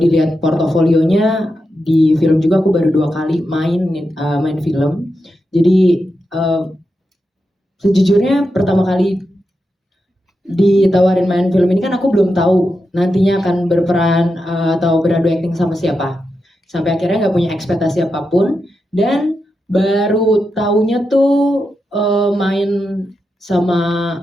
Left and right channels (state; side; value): normal; both; correlation 0.88